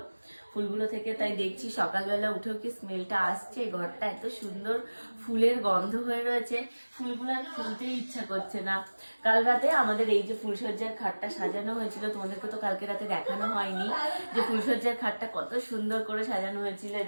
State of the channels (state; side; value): inverted; both; correlation -1.00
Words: ফুলগুলো থেকে, তাই দেখছি সকালবেলা উঠেও কি স্মেলটা আসছে। ঘরটা এত সুন্দর ফুলের গন্ধ হয়ে রয়েছে, ফুলগুলো আর খুলতেই ইচ্ছা করছে না। কাল রাতে আমাদের এই যে ফুলসজ্জার খাটটা সাজানো হয়েছিল, তোমাদেরকে তো কালকে রাতে দেখানো হয়নি যে ফুলসজ্জার খাটটা কত সুন্দর করে সাজানো হয়েছিল।